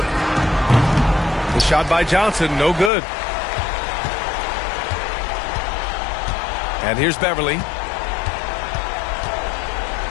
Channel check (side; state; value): right; drops out; at 2.9 s